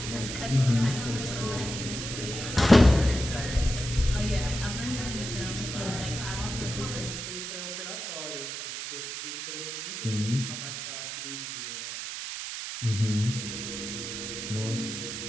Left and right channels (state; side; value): noise; right; hiss, 6 dB below the sound